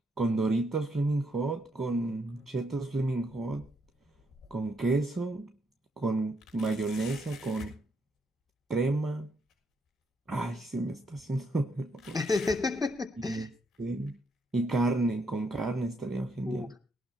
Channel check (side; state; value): both; normal; correlation 0.75